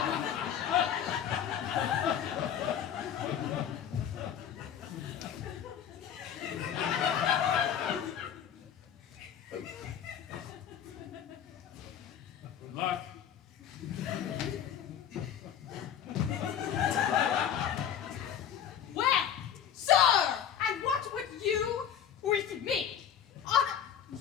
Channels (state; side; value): quieter; right; 9.1 dB